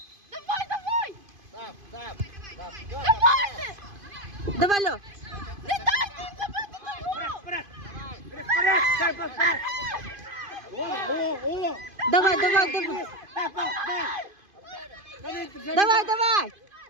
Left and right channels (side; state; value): left; late; 2.5 ms